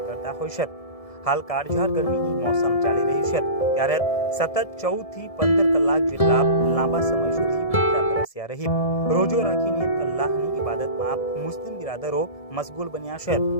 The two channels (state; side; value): late; right; 1.7 ms